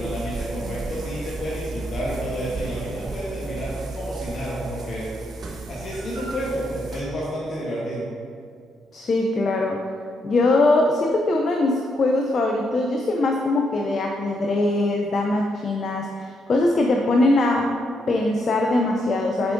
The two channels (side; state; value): both; normal; correlation 0.78